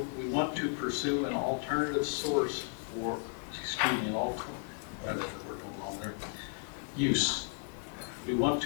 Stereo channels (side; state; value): right; silent; 55 dB below the other